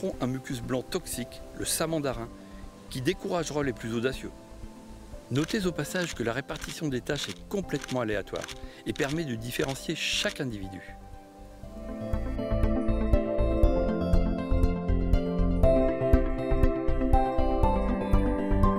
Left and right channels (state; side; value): identical; both; correlation 1.00